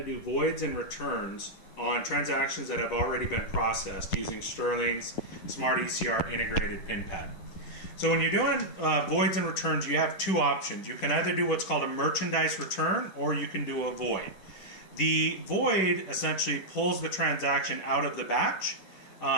do voids and returns on transactions that have already been processed using Sterling's Smart ECR integrated pin pad. So when you're doing voids and returns, you have two options. You can either do what's called a merchandise return or you can do a void. The void essentially pulls the transaction out of the batch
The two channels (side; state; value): right; late; 10 ms